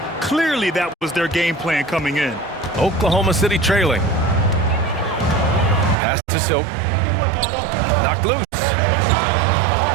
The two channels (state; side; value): drops out; left; at 6.0 s